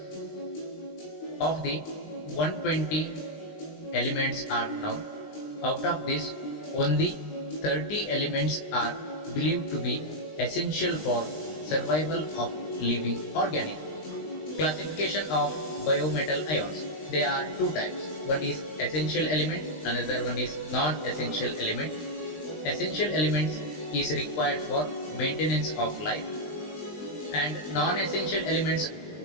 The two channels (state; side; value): late; right; 20 ms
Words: Of the 120 elements are known. Out of this, only 30 elements are believed to be essential for survival of living organisms. Classification of biometal ions. There are two types. One is essential element, another one is non-essential element. Essential elements is required for maintenance of life, and non-essential elements,